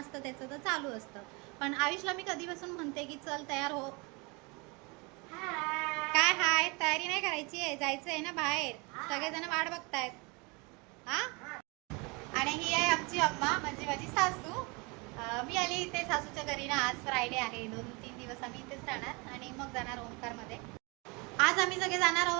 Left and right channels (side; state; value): left; quieter; 28.7 dB